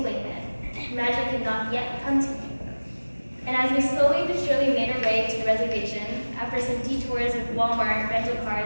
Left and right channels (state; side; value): inverted; both; correlation -1.00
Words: then. Magic had not yet come to me. And as we slowly but surely made our way to the reservation, after some detours with Walmart, rental